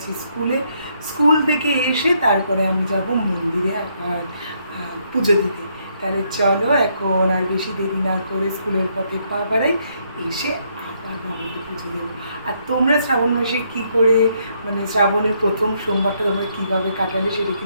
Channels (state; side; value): inverted; both; correlation -0.73